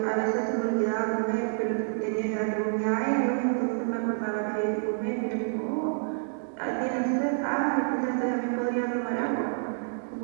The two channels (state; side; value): silent; left; digital silence